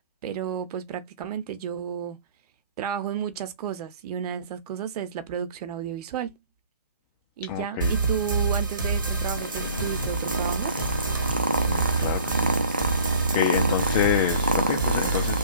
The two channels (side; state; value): both; inverted; correlation -0.50